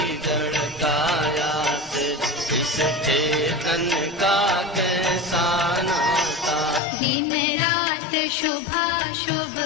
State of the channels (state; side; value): drops out; right; at 6.8 s